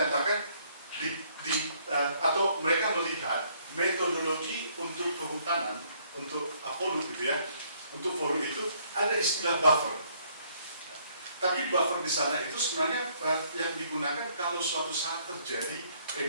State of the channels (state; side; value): inverted; both; correlation -0.65